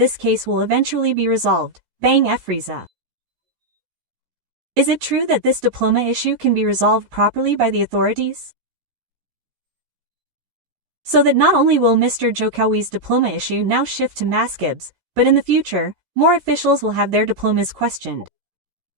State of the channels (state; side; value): late; left; 14 ms